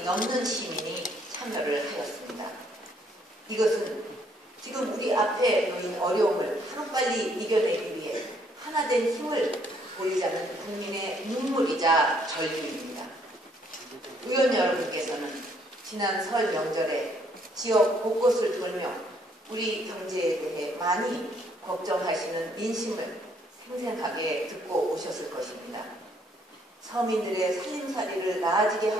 넘는 시민이 참여를 하였습니다. 이것은 지금 우리 앞에 놓인 어려움을 하루빨리 이겨내기 위해 하나된 힘을 보이자는 국민의 눈물이자 절규입니다. 의원 여러분께서는 지난 설 명절에 지역 곳곳을 돌며 우리 경제에 대해 많이 걱정하시는 민심을 생생하게 듣고 오셨을 것입니다. 서민들의 살림살이를 나아지게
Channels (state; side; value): normal; both; correlation 0.67